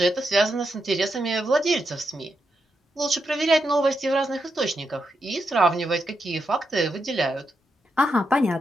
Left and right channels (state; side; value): normal; both; correlation 0.84